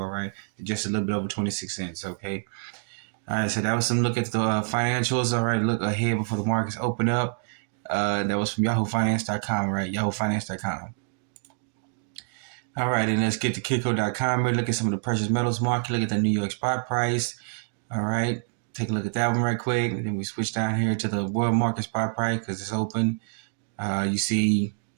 right, just a little bit over 26 cents. Okay. All right, so that was some look at the financials. All right, look ahead before the markets open up. That was from YahooFinance.com. Right, YahooFinance.com. All right, and let's get to Kitco.com. Look at some of the precious metals market. Look at the New York spot price. All right, take a look at that one right quick. And then we switch down here to the world market spot price because it's open. You see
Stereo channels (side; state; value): left; silent; digital silence